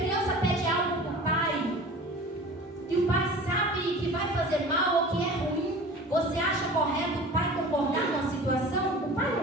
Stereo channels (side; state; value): both; normal; correlation 0.40